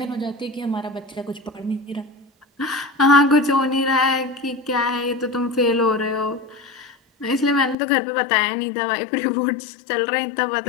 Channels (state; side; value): drops out; right; at 7.8 s